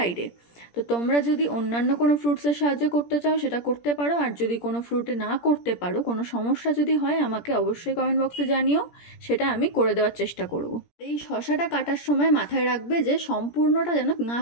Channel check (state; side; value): late; right; 17 ms